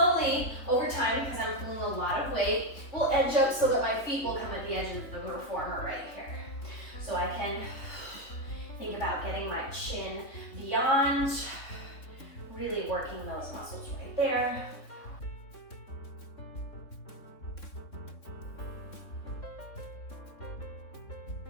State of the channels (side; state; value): right; late; 3.6 ms